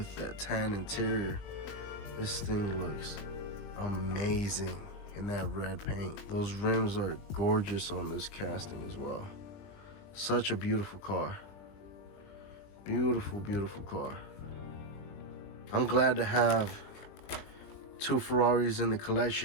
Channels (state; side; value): late; right; 20 ms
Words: that tan interior. This thing looks amazing in that red paint. Those rims are gorgeous on this casting as well. Such a beautiful car. Beautiful, beautiful car. I'm glad to have two Ferraris in the